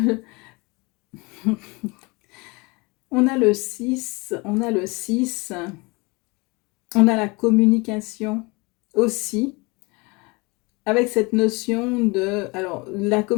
on a le 6, on a le 6, on a la communication aussi, avec cette notion de... Alors, la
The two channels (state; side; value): quieter; right; 26.8 dB